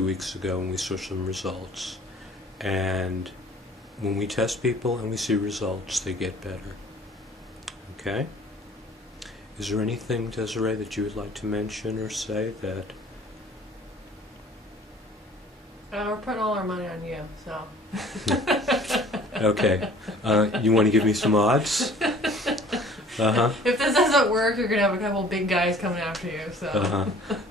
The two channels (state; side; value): normal; both; correlation 0.51